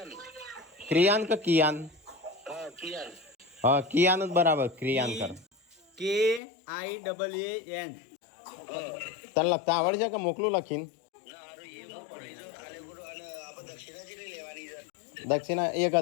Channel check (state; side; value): drops out; right; at 6.4 s